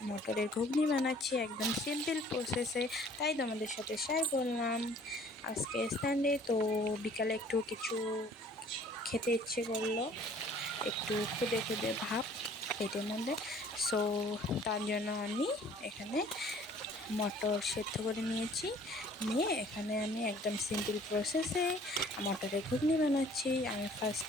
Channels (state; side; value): normal; both; correlation 0.54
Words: মটরের ঘুগনি বানাচ্ছি একদম সিম্পল প্রসেসে, তাই তোমাদের সাথে শেয়ার করলাম। আজকে সানডে তো বিকালে একটু কিছু খেতে ইচ্ছে করলো, একটু খুদে খুদে ভাব পেটের মধ্যে। সো তার জন্য আমি এখানে মটর সেদ্ধ করে নিয়েছি। নিয়ে এখানে আমি একদম সিম্পল প্রসেসে মটরের ঘুগনি বানাচ্ছি। আমি